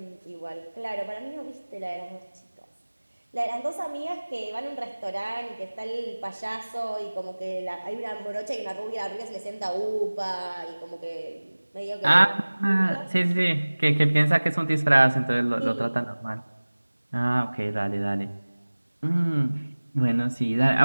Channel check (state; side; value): inverted; both; correlation -1.00